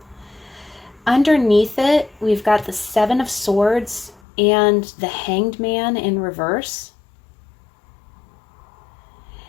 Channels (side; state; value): right; drops out; at 4.2 s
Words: Underneath it, we've got the Seven of Swords and the Hanged Man in reverse.